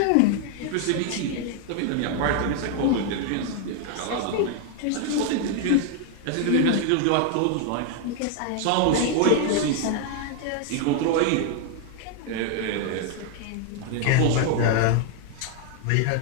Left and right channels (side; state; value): both; different; correlation 0.00